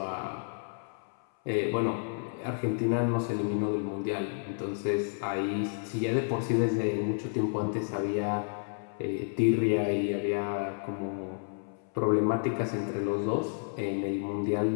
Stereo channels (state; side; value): silent; right; 57 dB below the other